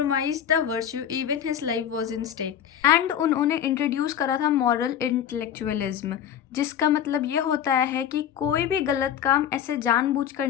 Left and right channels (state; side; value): quieter; right; 9.6 dB